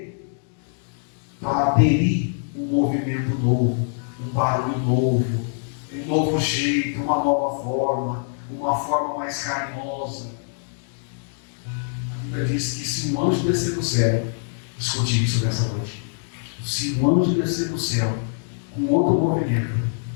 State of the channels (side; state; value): right; silent; digital silence